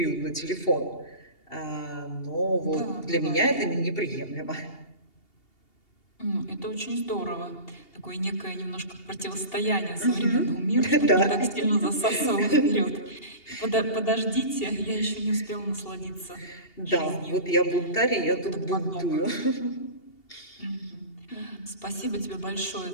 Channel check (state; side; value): late; right; 2.8 ms